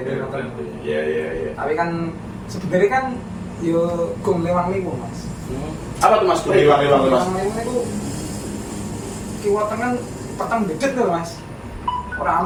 Iya. Tapi kan sebenarnya kan yo gong lewang-lewang Mas. Apa tuh Mas? Hilang Mas. Lewang-lewang itu kiwa tengah petang dedet lho Mas. Ora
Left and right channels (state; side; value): identical; both; correlation 1.00